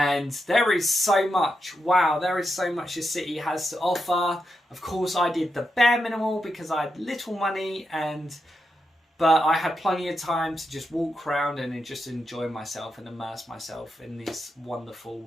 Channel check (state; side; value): normal; both; correlation 0.85